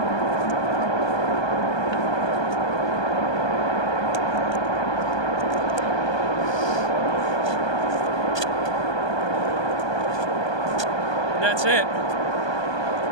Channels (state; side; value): late; right; 1.2 ms